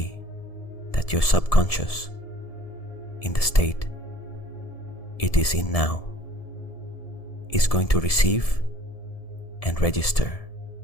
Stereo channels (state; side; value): late; right; 1.7 ms